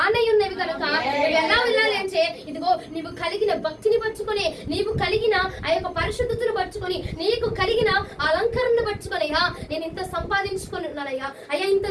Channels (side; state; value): both; identical; correlation 1.00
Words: ఉన్నవి కనుక నువ్వు ఎలా వెళ్ళాలి అంటే, ఇదిగో నీవు కలిగిన భక్తిని పట్టుకొని, నీవు కలిగిన ఆ యొక్క పరిశుద్ధతను పట్టుకొని, నీకు కలిగిన అలంకరణను పట్టుకొని, అయ్యా నేను ఇంత సంపాదించుకొని ఉన్నానయ్యా, అయ్యా ఇంత